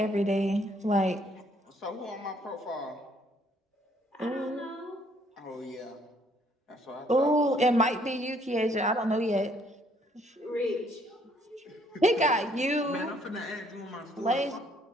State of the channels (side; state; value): both; normal; correlation 0.65